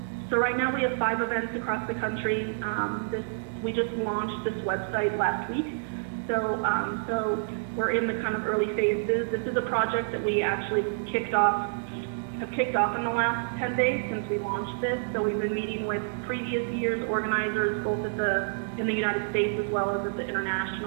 So right now we have 5 events across the country. We just launched this website last week, so we're in the kind of early phases. This is a project that we actually have kicked off in the last 10 days since we launched this. So we've been meeting with previous years' organizers, both in the United States as well as at the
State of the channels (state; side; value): silent; left; digital silence